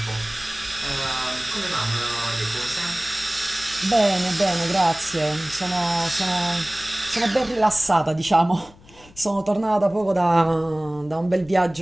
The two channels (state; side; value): noise; left; rumble, 24 dB below the sound